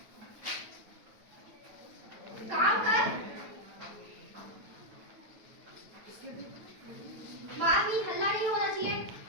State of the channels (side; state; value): left; late; 9.3 ms